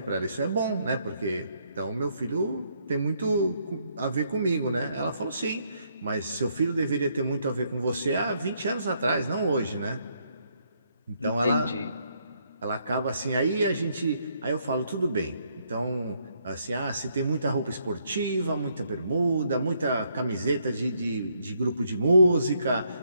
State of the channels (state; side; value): inverted; both; correlation -0.73